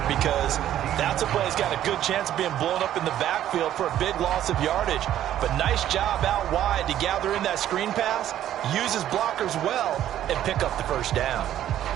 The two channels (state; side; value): quieter; left; 11.8 dB